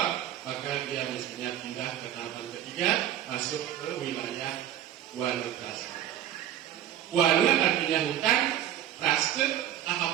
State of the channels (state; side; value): quieter; left; 11.2 dB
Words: maka dia mestinya pindah ke tahapan ketiga, masuk ke wilayah wana praste. Wana artinya hutan, praste